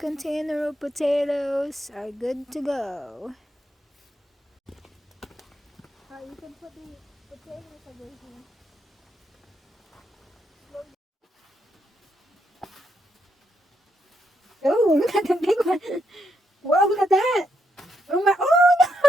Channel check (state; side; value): normal; both; correlation 0.79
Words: of potatoes are good to go. You can put the potatoes over here. Oh, look at the big one. Whoa, look at that. Oh my, oh